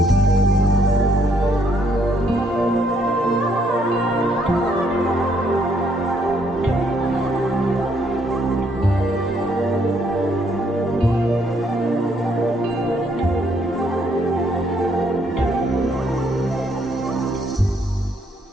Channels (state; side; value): normal; both; correlation 0.70